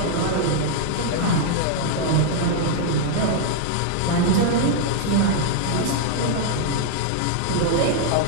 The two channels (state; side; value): different; both; correlation -0.01